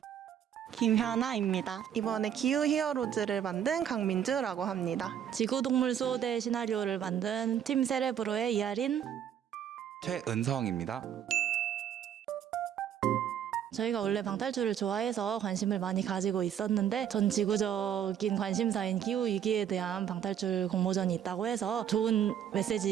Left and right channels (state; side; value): quieter; left; 9.4 dB